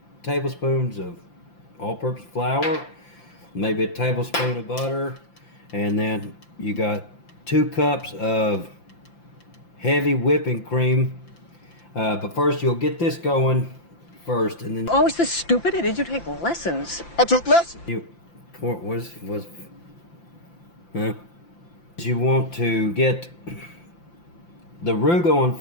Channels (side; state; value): right; late; 5.8 ms